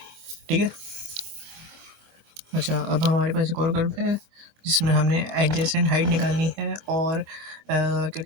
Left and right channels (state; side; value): late; left; 25 ms